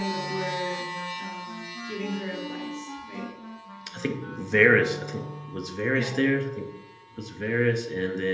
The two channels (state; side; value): identical; both; correlation 1.00